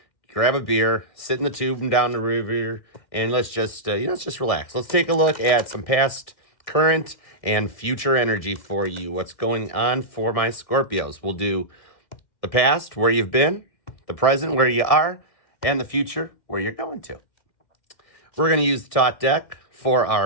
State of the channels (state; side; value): late; right; 1.7 ms